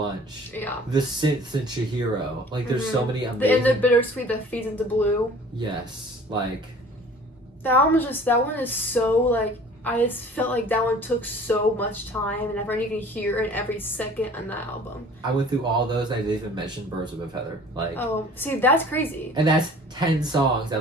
the synths in Chihiro. Like there's so many amazing. And the bittersweet that feeds into Blue. Yes, like. The album is just, that one is so like, I just felt like that one took so much time, and everyone you can hear it every second on that album. I went through all those. I didn't even mention Birds of a Feather. Like, oh, see, that's crazy. And that's 10 songs. I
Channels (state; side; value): normal; both; correlation 0.48